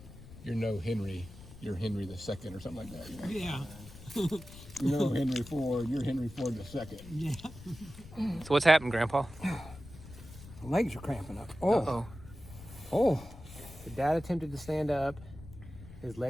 "You're no Henry, you're Henry the Second," or something like that. You know? Yeah. You're no Henry Ford, you're Henry Ford the Second. Yeah. So what's happened, Grandpa? Legs are cramping up. Uh-oh. Oh. The dad attempted to stand up. His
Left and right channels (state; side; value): noise; left; rumble, 16 dB below the sound